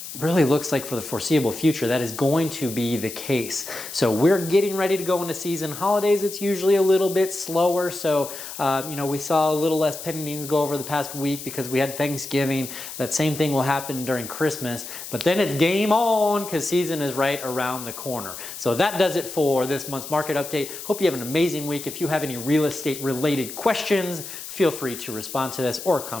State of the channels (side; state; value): left; noise; hiss, 10 dB below the sound